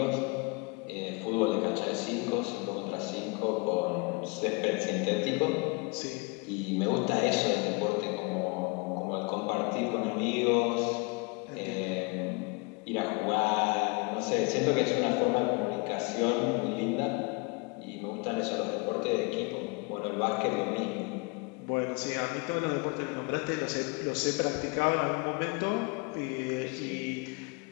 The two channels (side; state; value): right; quieter; 28.8 dB